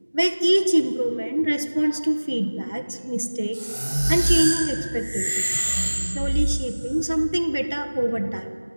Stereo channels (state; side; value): inverted; both; correlation -1.00